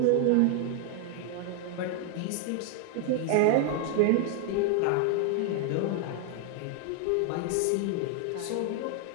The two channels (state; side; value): different; both; correlation 0.00